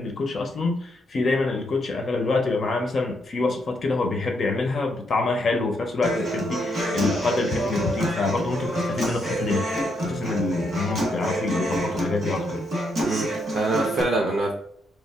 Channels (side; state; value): both; normal; correlation 0.77